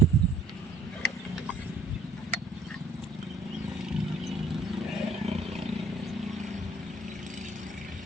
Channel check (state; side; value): normal; both; correlation 0.59